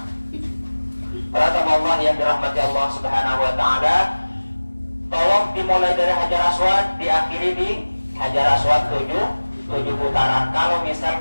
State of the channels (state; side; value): inverted; both; correlation -1.00